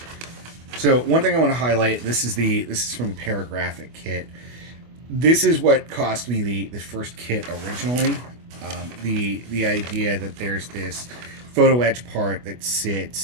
so one thing I want to highlight. This is from the Paragraphic kit. This is what cost me the first kit originally. The idea that there's this photo etch part that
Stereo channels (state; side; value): late; left; 25 ms